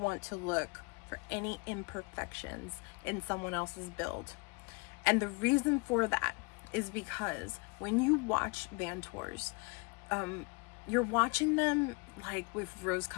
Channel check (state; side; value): quieter; right; 29.7 dB